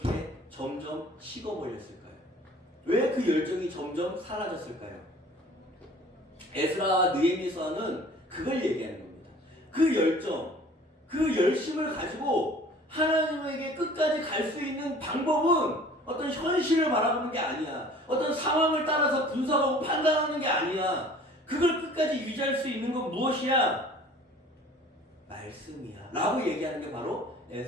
점점 식어버렸을까요? 왜 그 열정이 점점 사라졌을까요? 에스라와 느헤미야서는 그걸 얘기하는 겁니다. 그 열정, 그 열심을 가지고 하나님에게 끝까지 갈 수 있는 방법은 어떤 현실을 바라보는 게 아니야. 어떤 상황을 따라서 분석하고 판단하는 게 아니야. 그걸 끝까지 유지할 수 있는 건 무엇이야? 말씀이야. 라고 얘기하는 게 바로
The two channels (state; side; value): normal; both; correlation 0.48